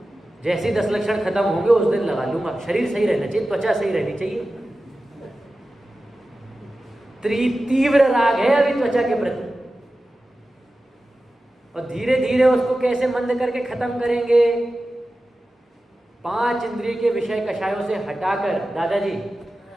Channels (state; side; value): normal; both; correlation 0.94